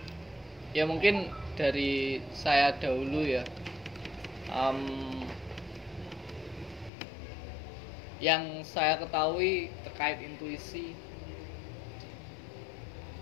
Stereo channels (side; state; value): right; drops out; at 6.9 s